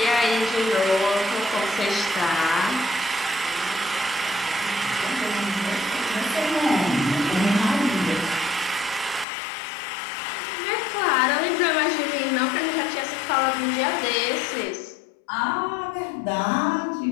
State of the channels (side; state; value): right; drops out; at 9.2 s